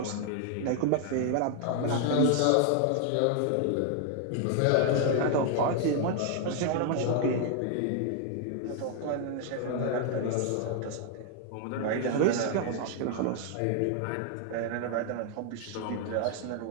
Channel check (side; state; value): both; different; correlation 0.00